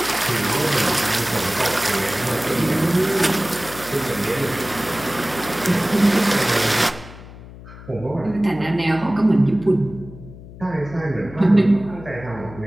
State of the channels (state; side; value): noise; left; hum, 16 dB below the sound